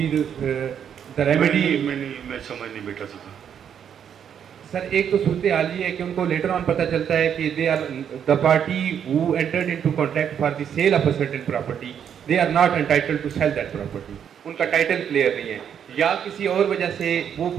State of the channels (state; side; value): quieter; left; 8.5 dB